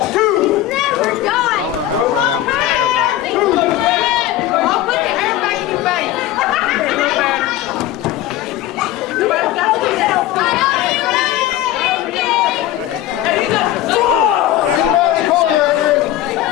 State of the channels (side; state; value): right; quieter; 13.5 dB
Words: I don't know how Brad Adams kicked out of that. Boom! Back elbow to the side of the head.